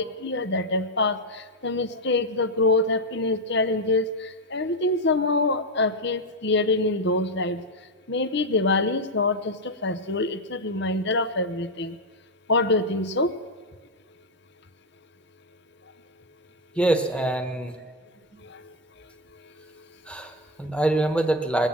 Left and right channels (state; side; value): normal; both; correlation 0.05